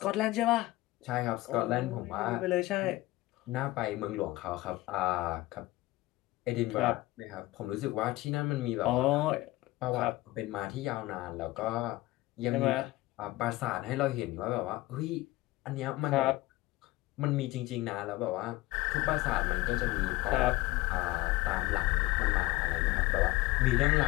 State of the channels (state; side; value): quieter; right; 18.8 dB